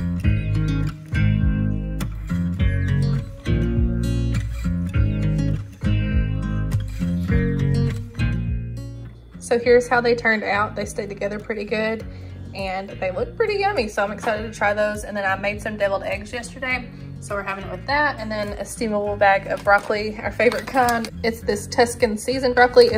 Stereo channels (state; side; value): identical; both; correlation 1.00